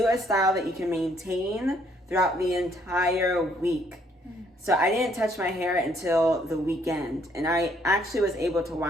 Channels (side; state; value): both; normal; correlation 0.67